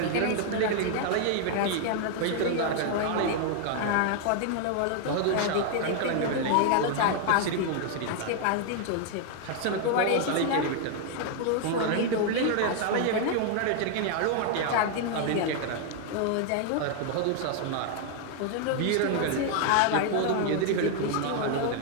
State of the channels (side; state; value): both; different; correlation 0.00